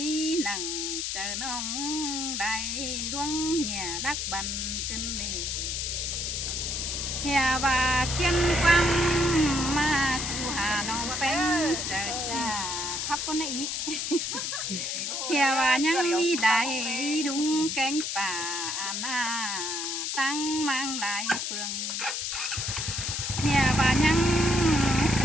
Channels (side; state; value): left; noise; hiss, 2 dB below the sound